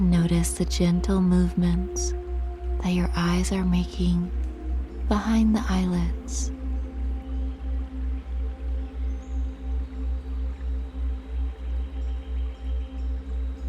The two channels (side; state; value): both; identical; correlation 1.00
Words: notice the gentle movements that your eyes are making behind the eyelids.